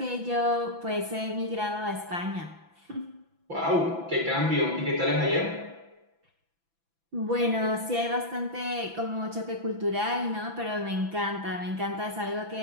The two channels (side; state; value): left; late; 6.0 ms